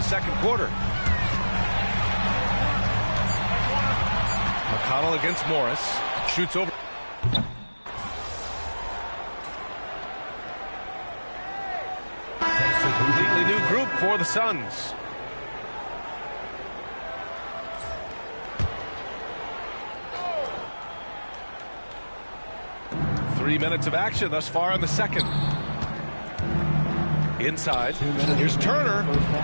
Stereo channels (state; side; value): inverted; both; correlation -1.00